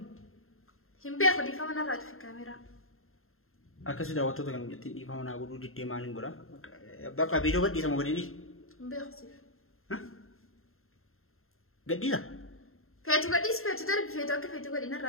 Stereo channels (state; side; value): late; right; 0.61 ms